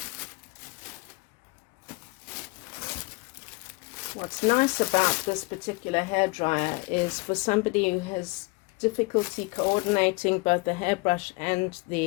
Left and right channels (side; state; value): right; quieter; 26.0 dB